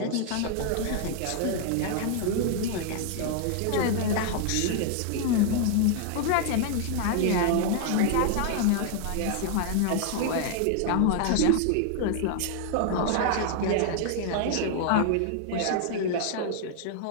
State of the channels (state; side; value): different; both; correlation 0.00